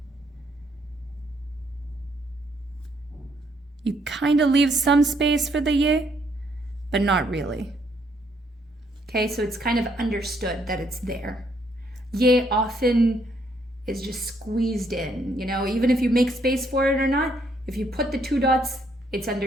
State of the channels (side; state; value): both; normal; correlation 0.70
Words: You kind of leave some space for the ye, but not really. Okay, so it's kind of understood that it's there. Ye often is just squeezed in, you know, even if you make space for it or not, if you put the two dots, it's